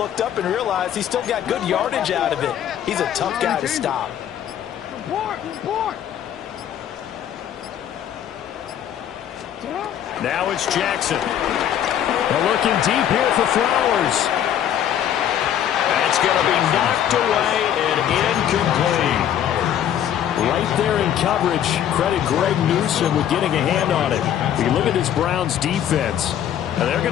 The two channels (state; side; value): quieter; right; 10.3 dB